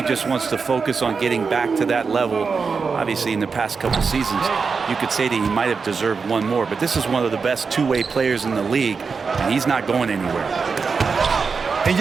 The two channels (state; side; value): quieter; left; 5.1 dB